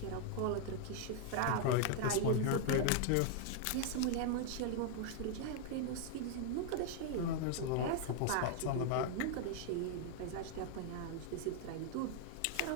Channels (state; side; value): different; both; correlation 0.00